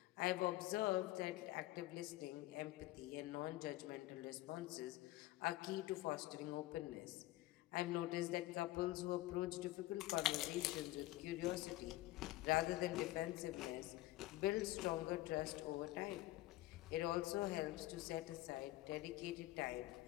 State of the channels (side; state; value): right; quieter; 17.2 dB